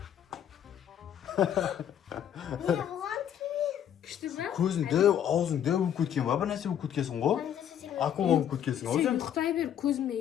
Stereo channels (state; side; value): quieter; right; 9.7 dB